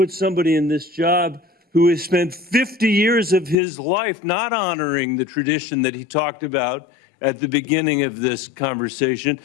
somebody in this job who has spent 50 years of his life not honoring the tradition that he talked about at the beginning of this conversation,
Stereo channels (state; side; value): drops out; right; at 3.6 s